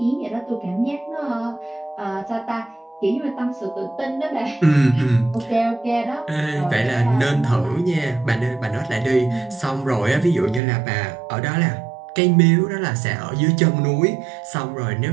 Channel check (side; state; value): left; drops out; at 10.6 s